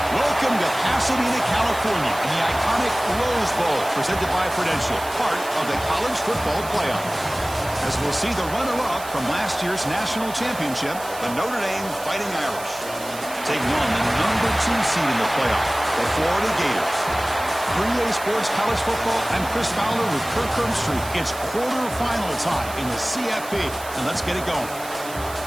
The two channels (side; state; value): right; noise; hiss, 14 dB below the sound